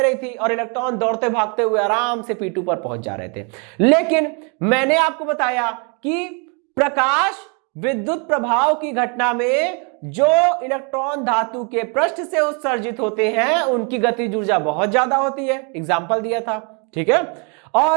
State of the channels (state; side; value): quieter; left; 35.6 dB